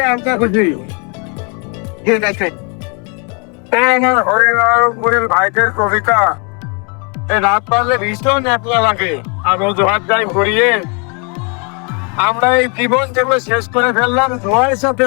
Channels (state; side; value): quieter; right; 35.0 dB